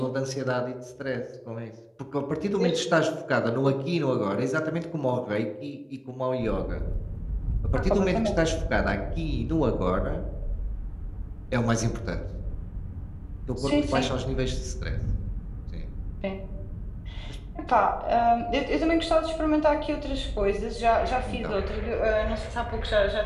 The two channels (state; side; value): identical; both; correlation 1.00